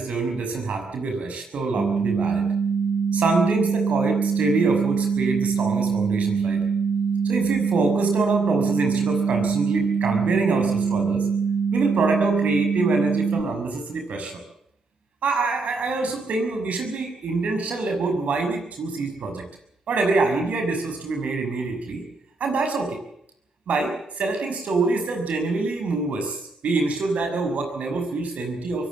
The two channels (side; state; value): left; quieter; 4.0 dB